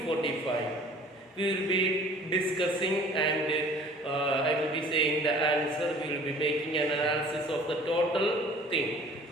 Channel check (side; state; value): both; normal; correlation 0.49